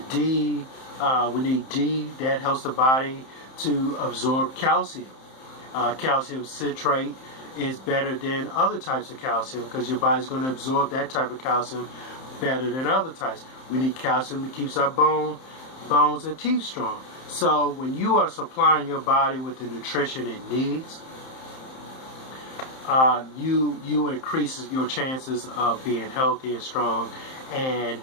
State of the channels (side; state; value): right; late; 31 ms